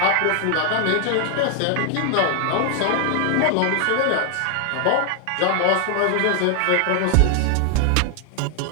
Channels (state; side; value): different; both; correlation 0.00